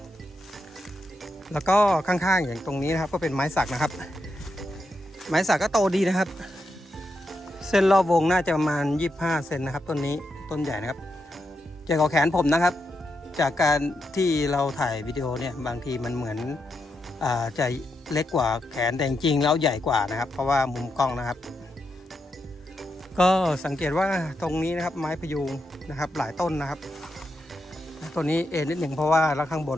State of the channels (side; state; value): both; normal; correlation 0.84